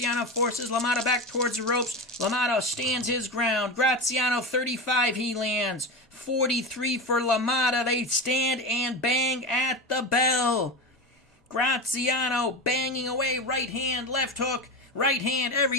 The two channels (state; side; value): normal; both; correlation 0.23